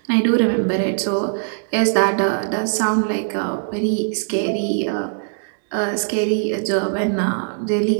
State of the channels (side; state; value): left; silent; digital silence